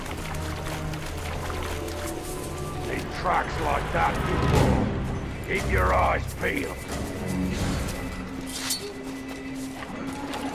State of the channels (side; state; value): both; identical; correlation 1.00